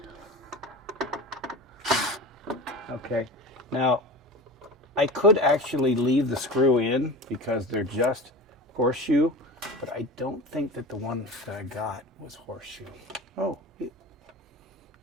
okay, now I could actually leave the screw in because they're just horseshoe, but I don't think that the one that I got was horseshoe. Oh,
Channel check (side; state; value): both; normal; correlation 0.32